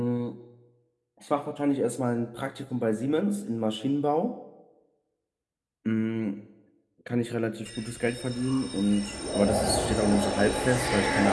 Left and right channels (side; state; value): both; identical; correlation 1.00